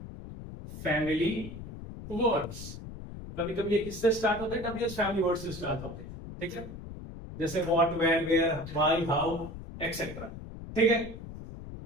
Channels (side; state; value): left; noise; rumble, 11 dB below the sound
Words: family words। कभी कभी ये किससे स्टार्ट होते हैं? WH फैमिली वर्ड से स्टार्ट होते हैं। ठीक है, जैसे what, where, where, why, how, etcetera. ठीक है,